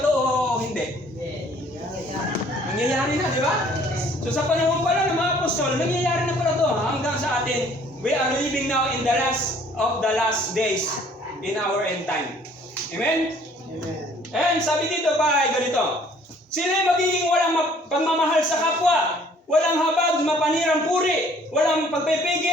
o hindi? Nangyayari na, di ba? So sa panahon pala ng mga apostol, nangyayari na pala ito hanggang sa atin. We are living now in the last of the last days in our end time. Amen? Amen. And sabi dito pa ay ganito, sila magiging walang pagmamahal sa kapwa, walang habag, mapanirang puri, walang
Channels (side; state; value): both; normal; correlation 0.57